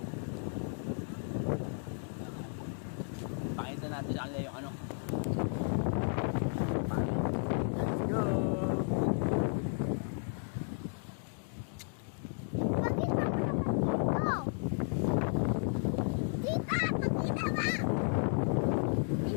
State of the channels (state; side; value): silent; right; 55 dB below the other